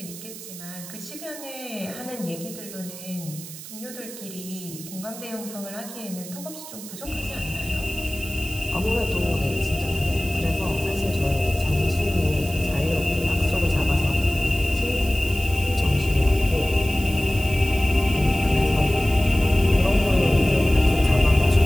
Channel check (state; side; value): noise; right; hiss, 13 dB below the sound